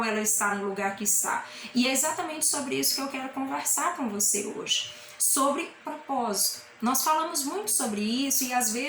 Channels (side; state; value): both; identical; correlation 1.00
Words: ela está no lugar que está. E é exatamente sobre isso que eu quero conversar com você hoje. Sobre propósito. Nós falamos muito sobre isso e às